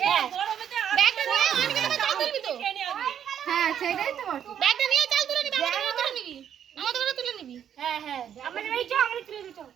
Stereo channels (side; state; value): left; quieter; 9.2 dB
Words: গরমেতে ব্যাগটা নিয়ে অঙ্কিতা চাল তুলবি তো হ্যাঁ সেটাই তো বলছি ব্যাগটা নিয়ে চাল তুলে নিবি আমাদের ঘরে তুলে নিবি আমাদের ঘরে তুলে নিবি হ্যাঁ হ্যাঁ আমাদের বাড়ি চল আমাদের তুলে দিতে